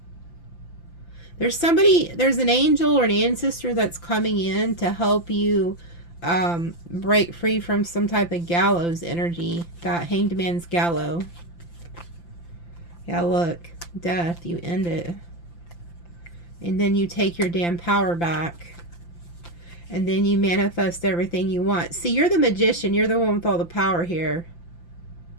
There's an angel or an ancestor that's coming in to help you break free from some type of gallows energy. That Hanged Man's gallows. Yeah, look. Death, you end it. And then you take your damn power back. And then you manifest everything you want. See, you're the magician. You're the one with all the power here.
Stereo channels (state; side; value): late; right; 5.8 ms